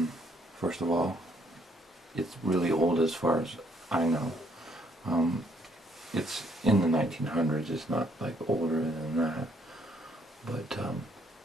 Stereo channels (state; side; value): normal; both; correlation 0.68